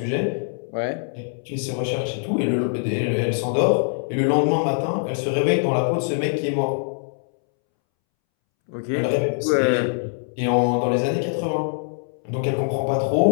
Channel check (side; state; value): right; silent; 63 dB below the other